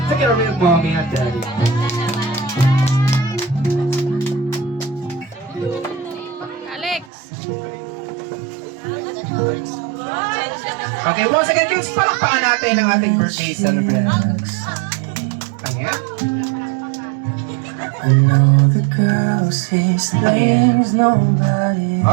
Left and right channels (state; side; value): drops out; left; at 7.1 s